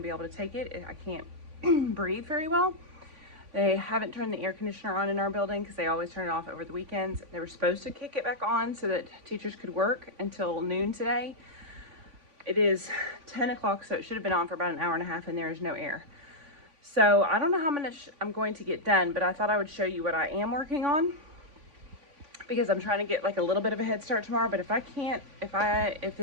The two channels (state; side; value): late; left; 3.5 ms